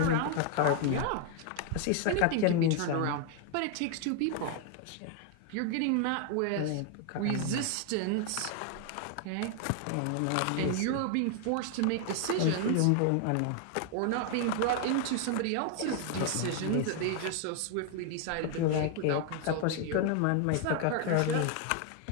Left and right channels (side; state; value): both; different; correlation 0.00